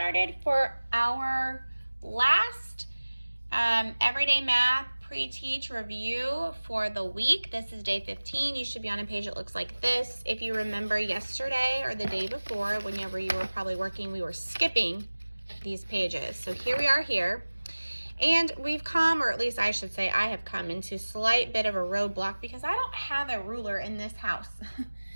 for our last everyday math pre-teach review for the week. This is day 15. You should be on a page that looks like this. If you remember yesterday or the day before, whenever you were probably working, we were skipping these pages. So here we are here. And we've come, or at least I should say I have come into a slight bit of a roadblock because I don't have a ruler in this house.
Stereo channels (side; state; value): both; inverted; correlation -1.00